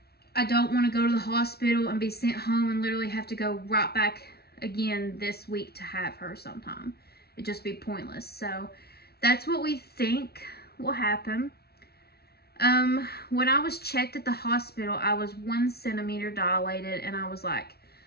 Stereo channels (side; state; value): right; late; 0.46 ms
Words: I don't want to go to the hospital and be sent home and literally have to go right back again this week to have her sometime. It'd just be pointless. So that's what we think will happen. When I was checked at the hospital, I was 1 centimeter dilated, and I was like,